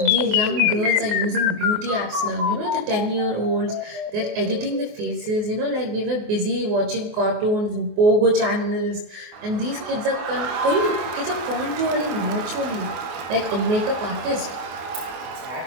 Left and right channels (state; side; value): late; left; 23 ms